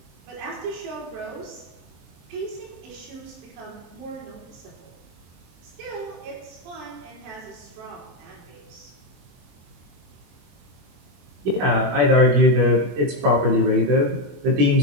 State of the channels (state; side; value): late; left; 23 ms